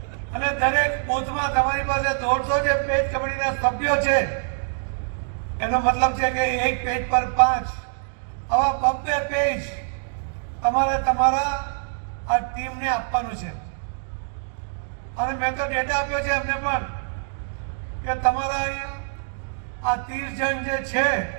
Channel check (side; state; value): left; silent; digital silence